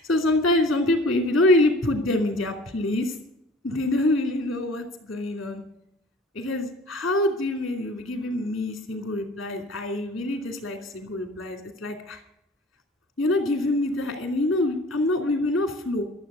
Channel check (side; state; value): both; normal; correlation 0.46